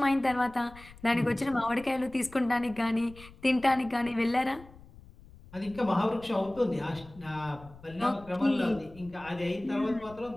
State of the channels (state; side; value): noise; left; rumble, 21 dB below the sound